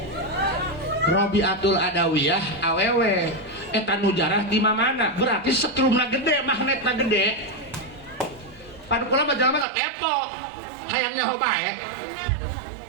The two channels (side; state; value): left; drops out; at 9.7 s